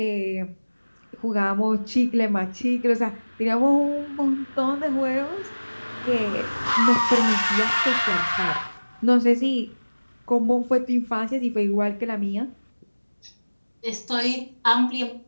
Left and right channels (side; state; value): both; inverted; correlation -1.00